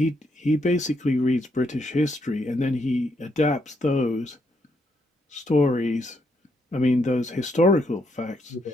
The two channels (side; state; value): both; normal; correlation 0.76